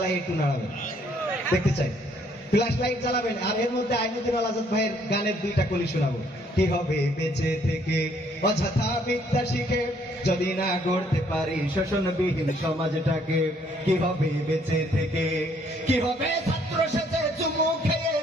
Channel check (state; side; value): normal; both; correlation 0.66